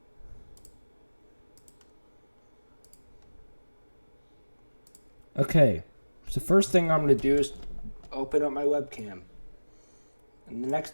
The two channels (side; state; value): both; inverted; correlation -1.00